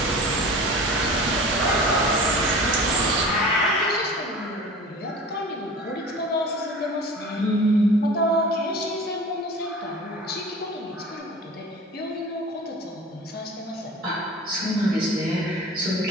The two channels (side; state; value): both; normal; correlation 0.39